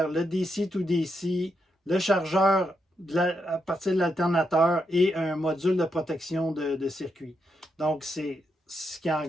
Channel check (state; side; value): normal; both; correlation 0.82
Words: le DC to DC, le chargeur à partir de l'alternateur et un module de protection de circuit. Donc, c'est ce qui